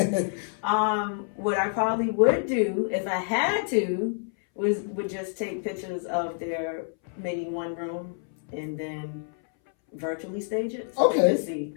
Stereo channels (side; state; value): right; silent; 60 dB below the other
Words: What I probably would do if I had to would just take pictures of their maybe one room and then virtually stage it so they could see